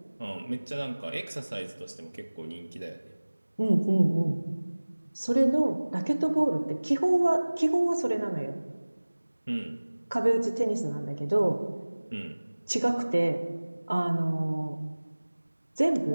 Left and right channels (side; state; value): both; inverted; correlation -1.00